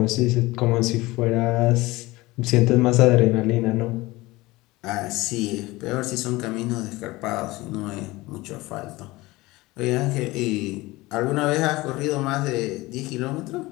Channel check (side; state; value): right; quieter; 20.5 dB